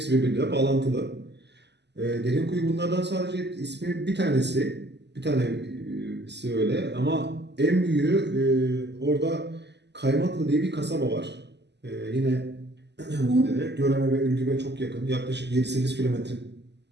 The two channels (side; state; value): left; late; 0.50 ms